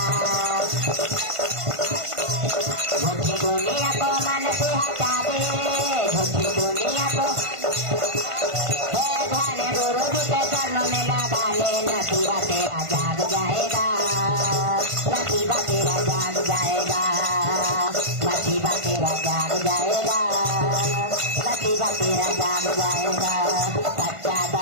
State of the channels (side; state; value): left; late; 1.5 ms